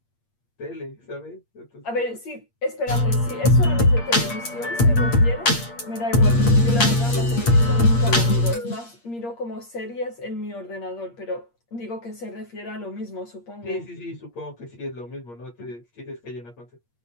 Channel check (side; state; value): right; late; 8.6 ms